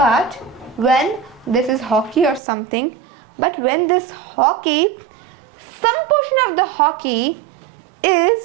when this is hockey or something, but when this hockey, some portion of the hockey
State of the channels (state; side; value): drops out; left; at 2.4 s